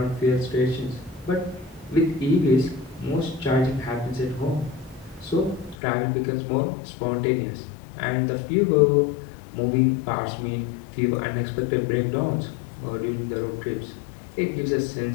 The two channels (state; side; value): drops out; right; at 5.8 s